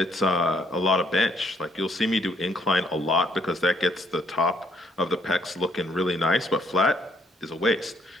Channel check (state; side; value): normal; both; correlation 0.68